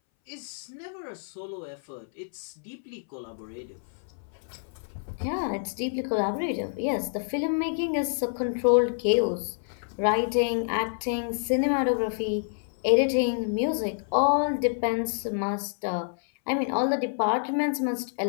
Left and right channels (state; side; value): silent; right; 59 dB below the other